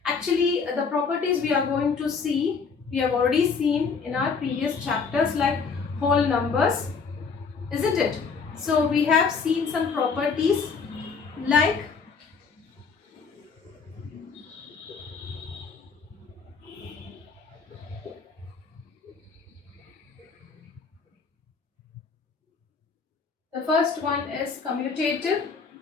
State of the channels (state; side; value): quieter; right; 5.3 dB